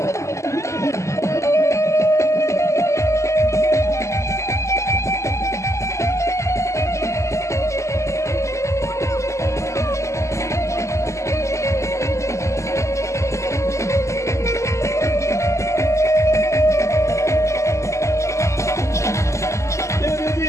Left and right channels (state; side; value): late; right; 0.14 ms